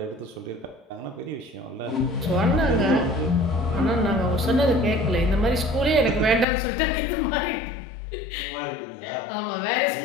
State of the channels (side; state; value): right; drops out; at 6.5 s